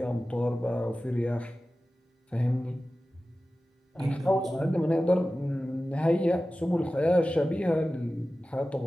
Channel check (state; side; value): normal; both; correlation 0.95